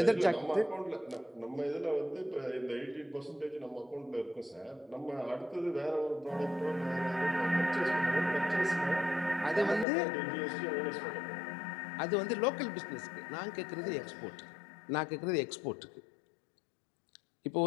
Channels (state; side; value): drops out; right; at 9.9 s